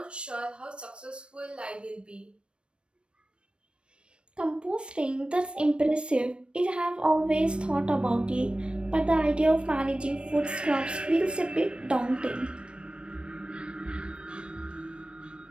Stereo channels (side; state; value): left; late; 0.057 ms